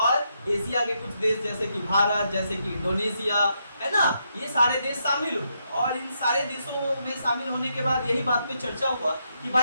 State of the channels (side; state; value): both; inverted; correlation -0.80